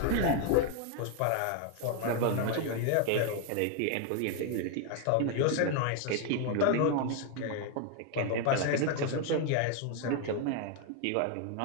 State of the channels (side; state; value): both; different; correlation 0.01